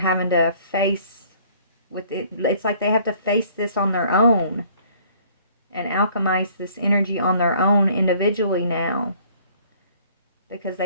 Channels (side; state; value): both; inverted; correlation -0.57